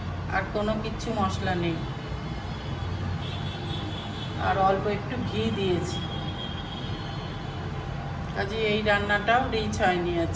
আর কোনো কিচ্ছু মশলা নেই। আর অল্প একটু ঘি দিয়েছি। কাজে এই রান্নাটাও রিচ হয়নি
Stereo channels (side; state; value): both; identical; correlation 1.00